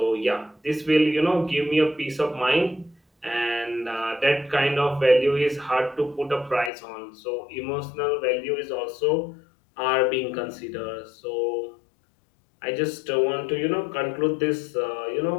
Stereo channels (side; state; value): right; drops out; at 6.7 s